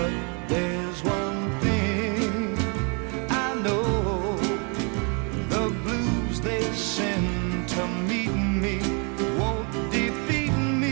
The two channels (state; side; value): quieter; left; 35.5 dB